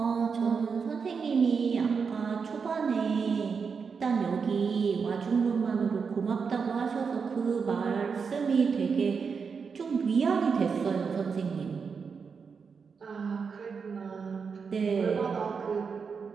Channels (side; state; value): left; quieter; 5.7 dB